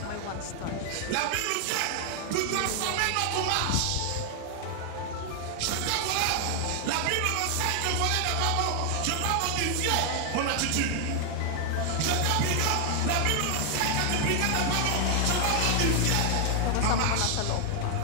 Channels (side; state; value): both; different; correlation 0.00